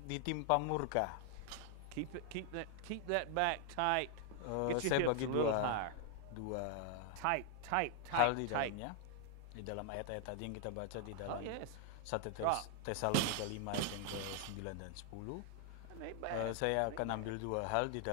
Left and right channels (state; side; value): different; both; correlation 0.00